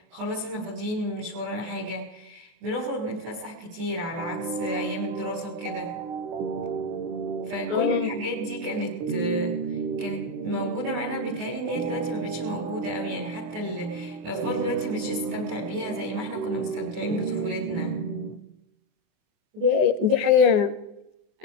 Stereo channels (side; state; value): left; late; 24 ms